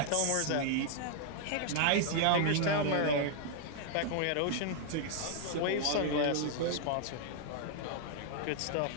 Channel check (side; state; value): both; different; correlation -0.01